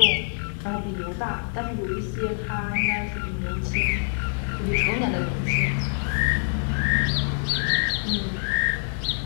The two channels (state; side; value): silent; right; digital silence